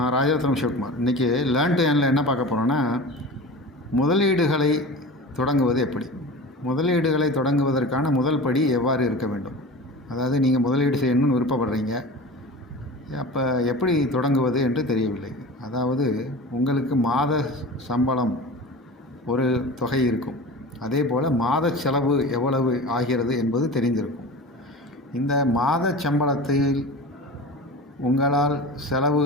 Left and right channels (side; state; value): both; normal; correlation 0.33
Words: ராஜரத்னம் சிவகுமார். இன்றைக்கி learn to ஏர்னில் என்ன பார்க்க போகிறோன்னா, முதலீடுகளை தொடங்குவது எப்படி, முதலீடுகளை தொடங்குவதற்கான முதல் படி எவ்வாறு இருக்க வேண்டும். அதாவது நீங்கள் முதலீடு செய்யணும்னு விருப்பப்படுறீங்க, அப்போ எப்படி தொடங்குவது என்று தெரியவில்லை. அதாவது உங்களுக்கு மாத சம்பளம் ஒரு தொகை இருக்கும், அதே போல் மாத செலவு எவ்வளவு ஆகிறது என்பது தெரிந்திருக்கும். இந்த மாத சம்பளத்தில் உங்களால்